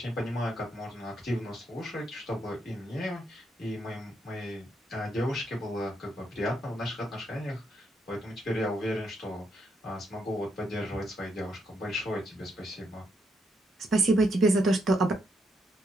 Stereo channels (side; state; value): both; normal; correlation 0.78